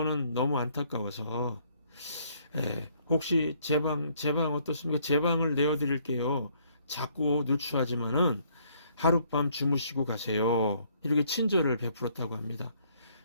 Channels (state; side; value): inverted; both; correlation -0.66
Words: 너무 안타까워서 혹시 제 방 어떻습니까? 제 방을 내어드릴게요. 자꾸 누추하지만은 하룻밤 주무시고 가세요. 이렇게 친절을 베풀었다고 합니다.